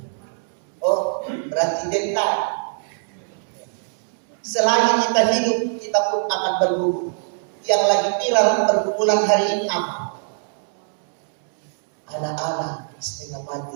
Oh, berarti dental. Selagi kita hidup, kita pun akan bergumul. Yang lagi viral pergumulan hari ini apa? Anak-anak setengah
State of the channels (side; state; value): left; silent; digital silence